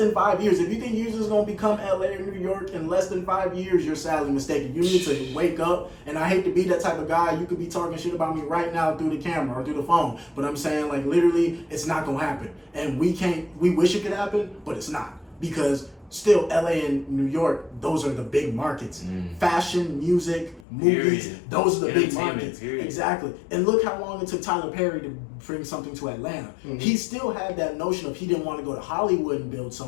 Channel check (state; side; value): drops out; right; at 20.7 s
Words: 5 years, if you think Houston is gonna become LA or New York in less than 5 years, you're sadly mistaken. You need to wake up. And I hate to be that type of guy. You could be talking shit about me right now through the camera or through the phone, but I'm saying like literally, it's not gonna happen. And we wish it could happen, but it's not, because still LA and New York, those are the big markets. Fashion, music, movies, those are the big markets. Exactly. And look how long it took Tyler Perry to bring something to Atlanta. He still had that notion of he didn't want to go to Hollywood and build